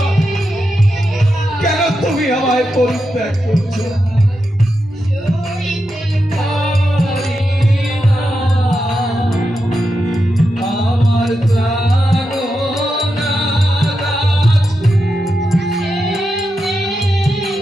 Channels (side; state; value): both; normal; correlation 0.87